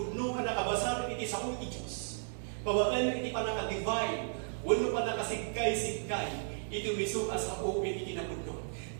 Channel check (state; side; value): silent; left; digital silence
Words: anak kabasar iti sao iti Diyos. Pabaan iti panaka-divine, wano panakasigkay-sigkay, iti miso asao iti kinapudno.